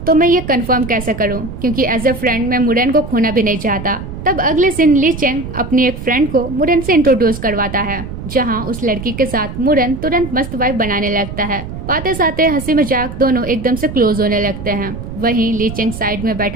तो मैं ये कंफर्म कैसे करूँ, क्योंकि एज ए फ्रेंड मैं मुरेन को खोना भी नहीं चाहता। तब अगले दिन लीचेंग अपनी एक फ्रेंड को मुरेन से इंट्रोड्यूस करवाता है, जहां उस लड़की के साथ मुरेन तुरंत मस्त वाइब बनाने लगता है। बातें साथे हंसी मजाक दोनों एकदम से क्लोज होने लगते हैं। वहीं लीचेंग साइड में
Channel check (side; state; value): right; noise; rumble, 9 dB below the sound